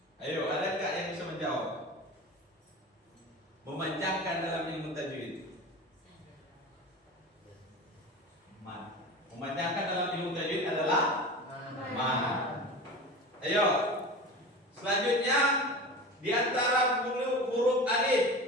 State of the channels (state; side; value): normal; both; correlation 0.32